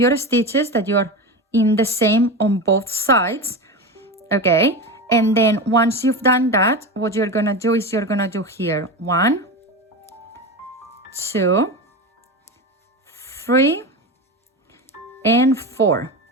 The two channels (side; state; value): both; normal; correlation 0.22